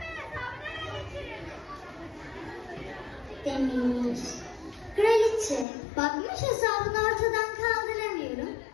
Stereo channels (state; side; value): drops out; right; at 5.7 s